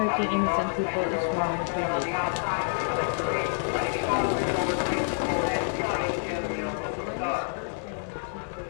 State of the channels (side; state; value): right; silent; digital silence